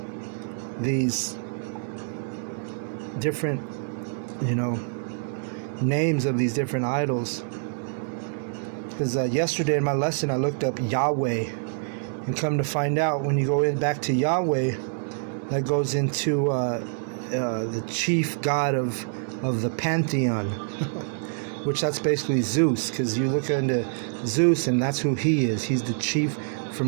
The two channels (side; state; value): left; silent; digital silence